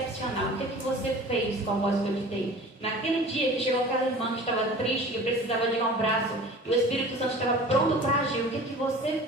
O que você fez com a voz que eu te dei? Naquele dia que chegou aquela irmã que estava triste, que precisava de um abraço, e o Espírito Santo estava pronto para agir, o que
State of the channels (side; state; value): both; normal; correlation 0.41